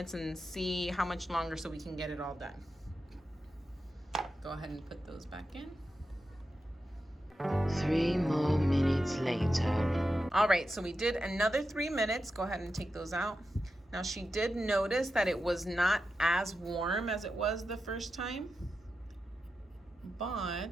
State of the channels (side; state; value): both; normal; correlation 0.90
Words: and see how much longer so we can get it all done. Go ahead and put those back in. 3 more minutes later. All right, so we did another 3 minutes. Go ahead and take those out. Now she did notice that it was not as warm as it was the first time,